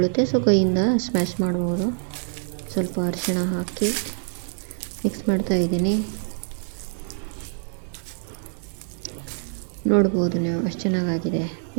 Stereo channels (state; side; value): silent; left; 62 dB below the other